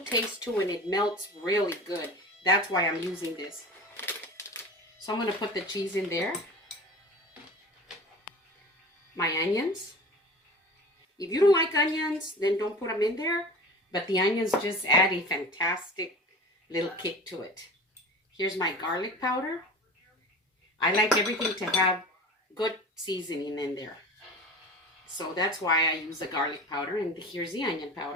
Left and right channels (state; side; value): normal; both; correlation 0.36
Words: taste to it and it melts really good. That's why I'm using this. So I'm going to put the cheese in there. My onions. If you don't like onions, then don't put them in there. But the onions just add a fantastic little kick to it. Here's my garlic powder. I like everything to have good seasoning in there. So that's why I use the garlic powder. And here's the onion